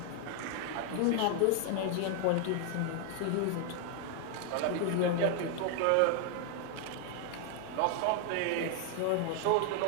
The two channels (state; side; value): different; both; correlation 0.00